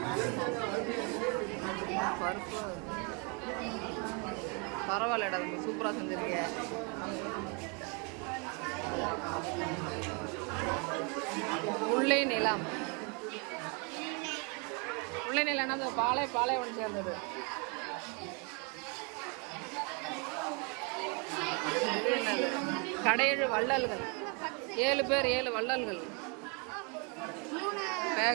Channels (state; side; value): quieter; left; 33.9 dB